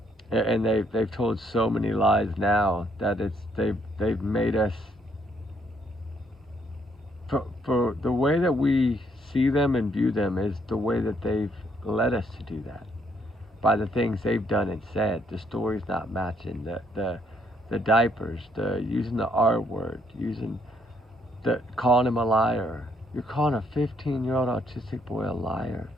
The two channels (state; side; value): normal; both; correlation 0.71